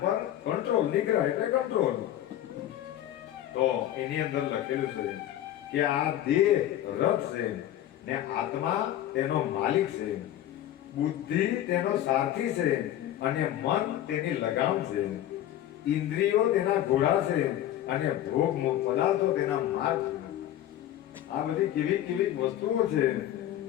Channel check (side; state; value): right; quieter; 12.4 dB